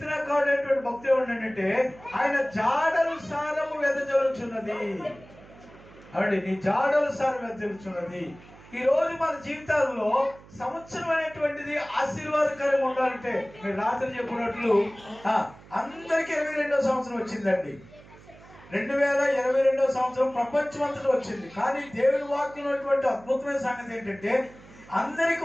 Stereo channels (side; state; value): right; noise; hum, 22 dB below the sound